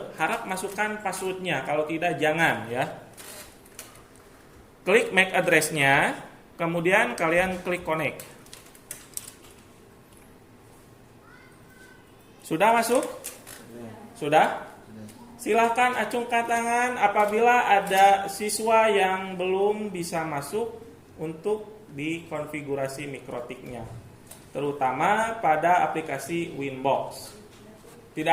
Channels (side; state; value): both; identical; correlation 1.00